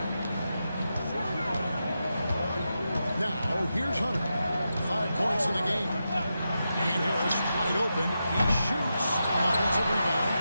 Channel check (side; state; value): both; inverted; correlation -0.88